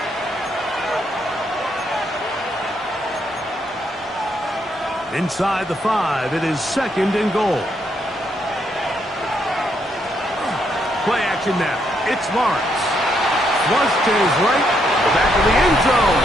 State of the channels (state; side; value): normal; both; correlation 0.75